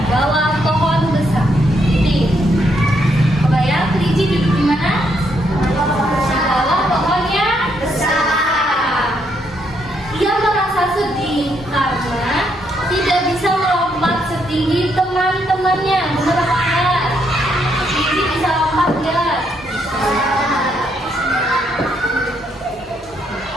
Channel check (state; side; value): normal; both; correlation 0.75